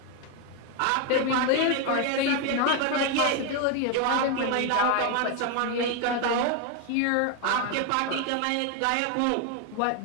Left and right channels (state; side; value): different; both; correlation 0.01